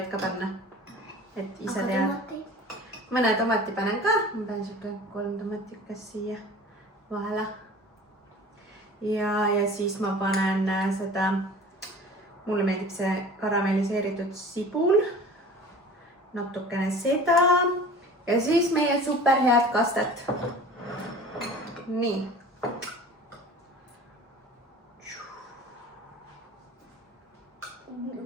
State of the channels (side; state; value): both; normal; correlation 0.41